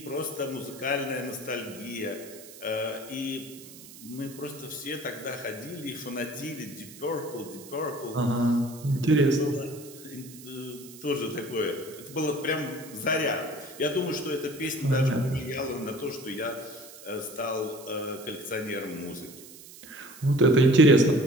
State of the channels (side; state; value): right; noise; hiss, 17 dB below the sound